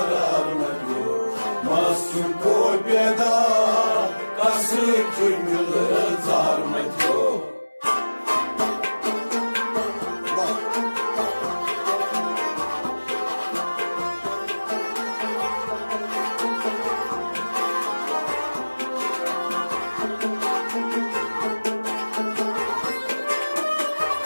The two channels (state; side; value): inverted; both; correlation -1.00